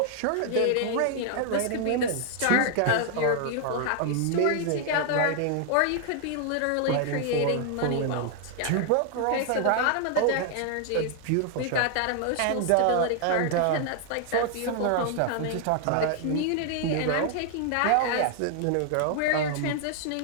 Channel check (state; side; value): different; both; correlation 0.00